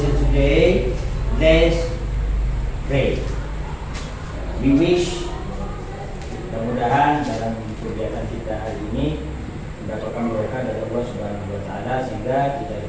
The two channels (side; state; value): both; identical; correlation 1.00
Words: today, let's pray. We wish mudah-mudahan dalam kegiatan kita hari ini mendapatkan berkah dari Allah Subhanahu wa taala sehingga kita